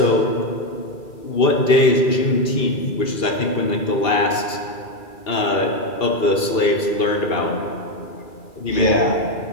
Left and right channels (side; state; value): right; late; 2.8 ms